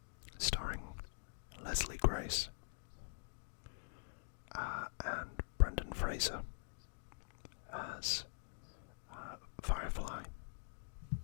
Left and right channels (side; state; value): right; silent; digital silence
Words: starring Leslie Grace and Brendan Fraser as Firefly,